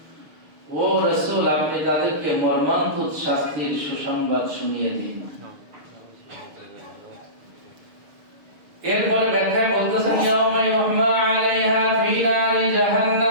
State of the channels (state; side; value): late; left; 6.8 ms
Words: ও রাসূল আপনি তাদেরকে মর্মান্তিক শাস্তির সুসংবাদ শুনিয়ে দিন। এরপরে ব্যাখ্যায় বলতেছেন ইয়াউমা ইউহমা আলাইহা ফি নারি